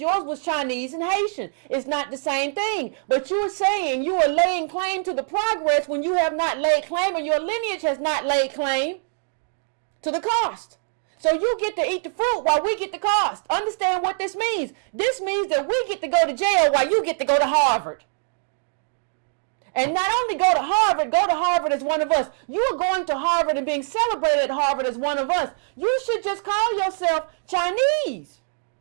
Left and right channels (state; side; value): silent; left; digital silence